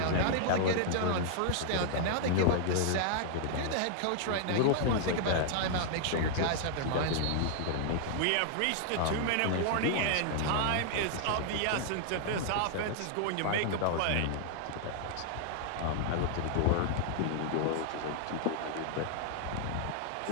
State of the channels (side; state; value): both; different; correlation -0.01